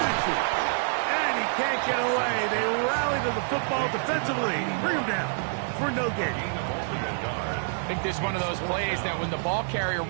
And he can't get away. They rally to the football defensively. Bring him down for no gain. think this is one of those plays that when the ball carrier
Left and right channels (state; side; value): silent; left; digital silence